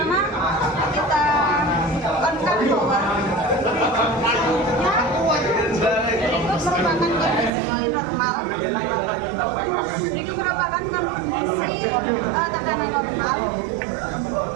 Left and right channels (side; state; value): left; drops out; at 7.5 s